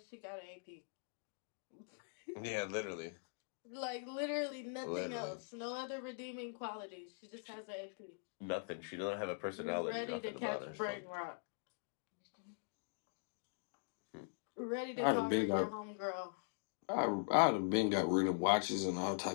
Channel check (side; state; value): right; silent; digital silence